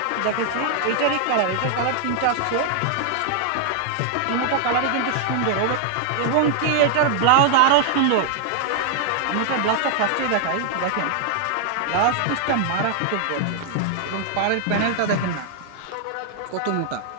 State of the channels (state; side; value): different; both; correlation 0.00